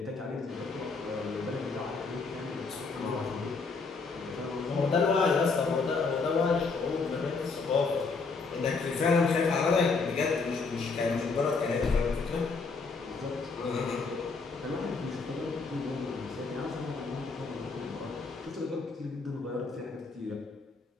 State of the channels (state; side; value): quieter; right; 4.4 dB